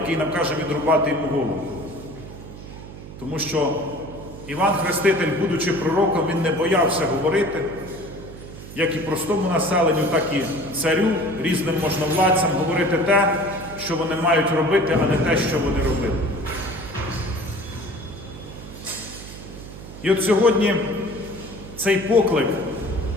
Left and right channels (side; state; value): right; noise; hum, 14 dB below the sound